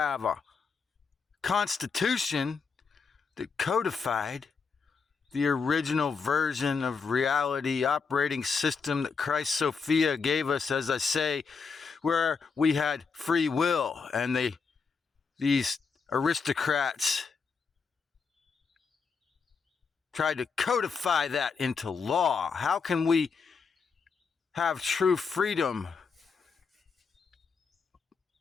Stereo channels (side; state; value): right; quieter; 5.3 dB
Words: a constitution that codified the original version of reality operating system that Christ Sophia gave us, as I say, where we had free will, and these aristocrats tried to codify that into law. How can we have true freedom?